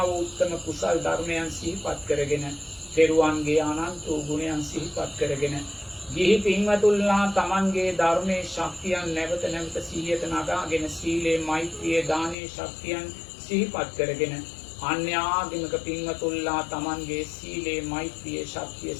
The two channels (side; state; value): right; drops out; at 12.4 s